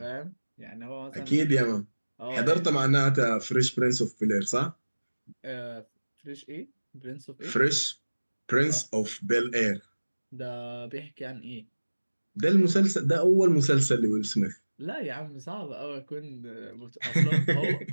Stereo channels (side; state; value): both; inverted; correlation -1.00